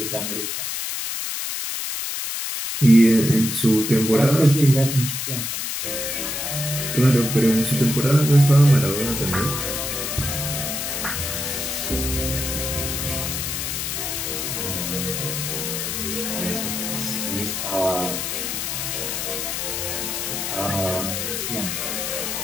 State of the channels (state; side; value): noise; left; hiss, 3 dB below the sound